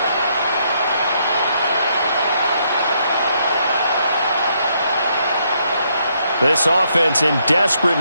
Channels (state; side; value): inverted; both; correlation -0.73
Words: This offense in